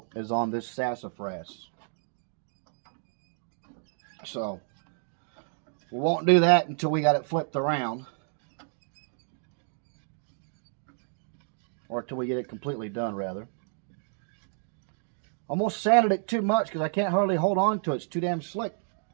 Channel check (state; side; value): silent; left; 58 dB below the other